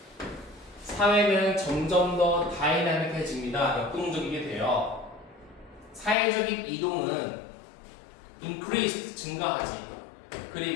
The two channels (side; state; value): right; drops out; at 6.2 s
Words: 사회는 점점 더 다이나믹해집니다. 역동적이게 돼요. 사회적인 이동은 increased, 증가하지.